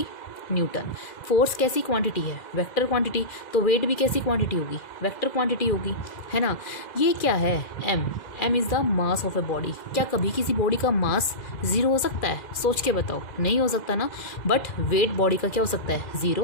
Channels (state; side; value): late; right; 2.0 ms